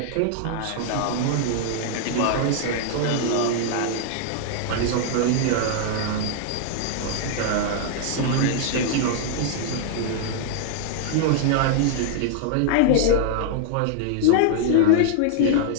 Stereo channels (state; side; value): different; both; correlation -0.01